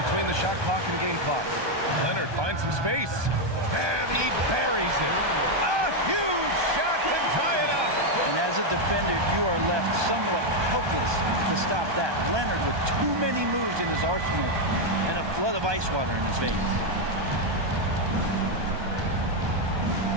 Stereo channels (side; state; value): left; late; 1.2 ms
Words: the shot clock and game clock. Leonard finds some space. And he buries it. A huge shot to tie it up. And as a defender, you are left somewhat helpless to stop that. Leonard with too many moves in his arsenal and a flood of ice water in his veins.